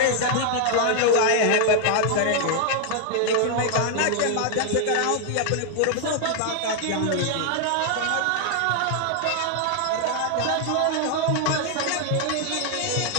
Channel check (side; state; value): both; different; correlation 0.00